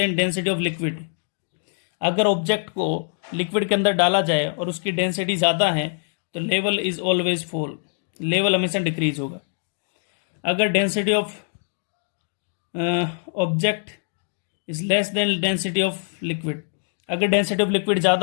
density of liquid. अगर ऑब्जेक्ट को लिक्विड के अंदर डाला जाए और उसकी डेंसिटी ज़्यादा है तो level is always fall, level हमेशा डिक्रीज होगा। अगर density of object is less than density of liquid, अगर डेंसिटी ऑफ लिक्विड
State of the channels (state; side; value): silent; right; digital silence